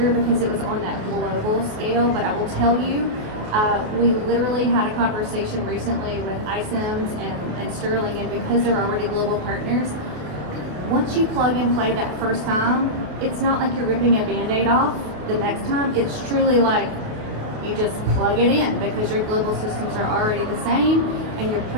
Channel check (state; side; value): late; left; 28 ms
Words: because it was on that global scale, but I will tell you, we literally had a conversation recently with iCIMS and Sterling, and because they're already global partners, once you plug and play that first time, it's not like you're ripping a Band-Aid off the next time. It's truly like you just plug it in because your global systems are already the same and you're